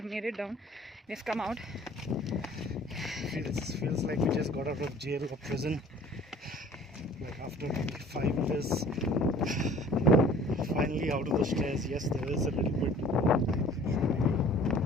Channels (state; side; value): normal; both; correlation 0.50